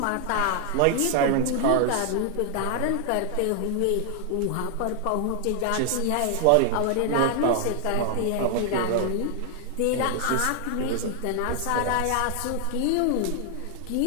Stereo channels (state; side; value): different; both; correlation 0.00